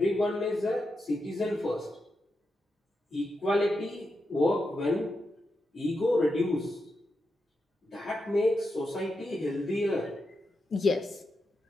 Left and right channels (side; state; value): both; normal; correlation 0.87